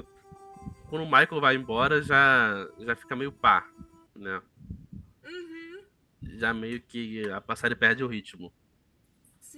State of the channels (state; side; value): identical; both; correlation 1.00